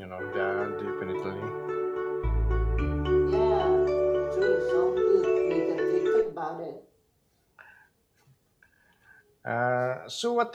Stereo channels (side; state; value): both; identical; correlation 1.00